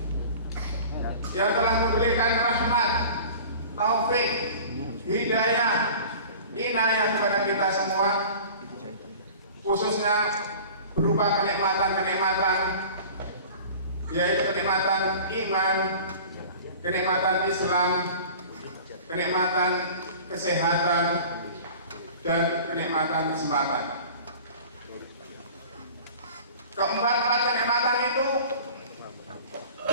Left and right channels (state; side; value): inverted; both; correlation -0.41